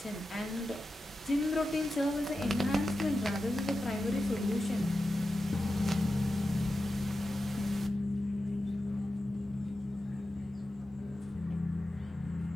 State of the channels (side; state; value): both; normal; correlation 0.91